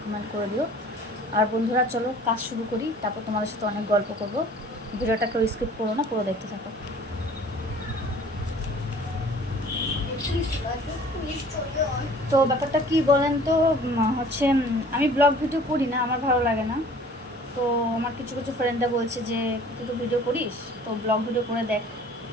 কমেন্ট করে দিও। আর বন্ধুরা চলো কাজ শুরু করি, তারপর তোমাদের সাথে অনেক গল্প করবো। ভিডিওটা কেউ স্কিপ করো না, পুরো দেখতে থাকো। তো ব্যাপারটা কি বলেন তো, হচ্ছে আমি ব্লগ ভিডিও করি না, আমার ভালো লাগে না। তো আমার কিছু কিছু ফ্রেন্ডরা বলছে যে তুই তো ভিডিও করিস, তো ব্লগ ভিডিও করে দেখ,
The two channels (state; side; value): normal; both; correlation 0.49